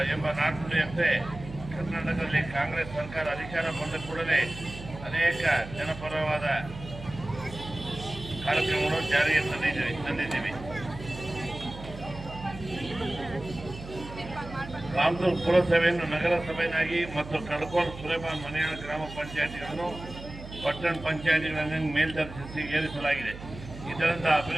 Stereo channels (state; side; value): noise; right; hum, 13 dB below the sound